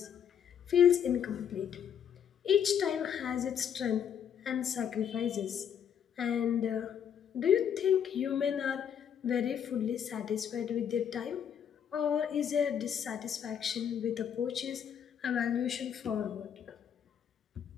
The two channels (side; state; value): right; quieter; 8.5 dB